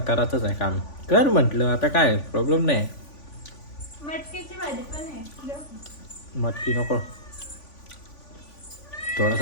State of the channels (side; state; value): right; late; 3.5 ms